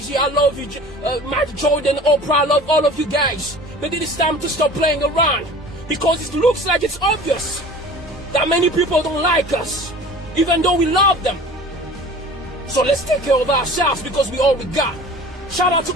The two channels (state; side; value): normal; both; correlation 0.42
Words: I love you, Mike Jordan, Oprah. I love all of you guys. But it is time to stop playing around, because it looks like it's obvious that many people don't like us, even though we love them. So let's take care of ourselves, because we all we got. Shout out